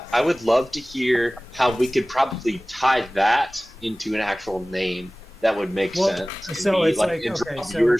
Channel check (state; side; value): normal; both; correlation 0.98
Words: I would love to hear how we could probably tie that into an actual name that would make Well, sense. It'd so be, it's like, and okay, draw so-